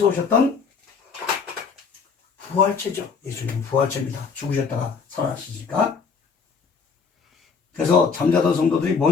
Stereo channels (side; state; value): right; quieter; 5.5 dB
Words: 오셨던 부활체죠. 예수님은 부활체입니다. 죽으셨다가 살아나시니까. 그래서 잠자던 성도들이